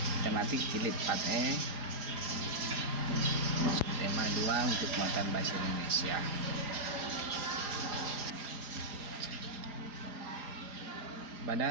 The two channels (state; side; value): late; left; 4.9 ms